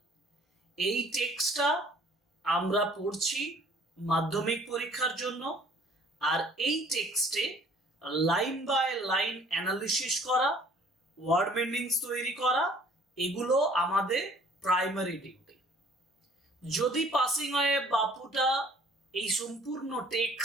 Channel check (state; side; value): normal; both; correlation 0.55